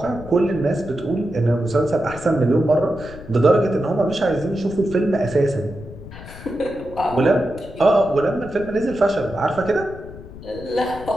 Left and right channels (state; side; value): noise; left; rumble, 15 dB below the sound